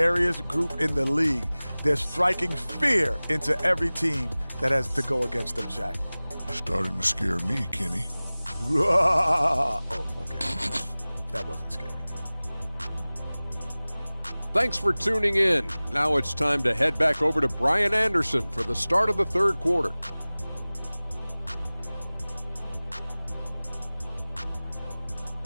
group in the league. They're striking fear into every team that has to go against them, Shaq. Starting to scare me, Kenny. Oh, okay. That wasn't scary. Thanks for tuning in. Now it's time to head back over to Brian Anderson for the start of the third quarter.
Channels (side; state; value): both; inverted; correlation -0.99